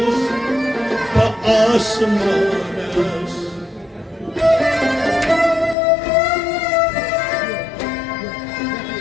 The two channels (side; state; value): right; drops out; at 5.8 s